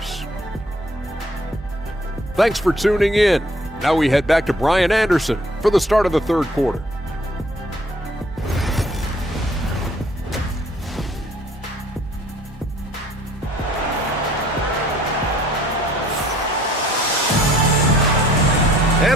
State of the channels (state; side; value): normal; both; correlation 0.59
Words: Thanks for tuning in. Now we head back to Brian Anderson for the start of the third quarter.